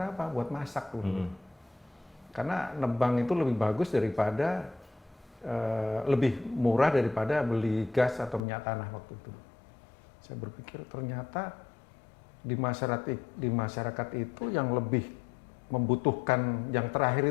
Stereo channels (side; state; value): right; drops out; at 8.4 s